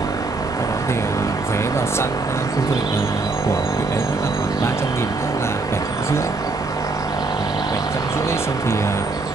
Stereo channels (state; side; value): quieter; left; 3.5 dB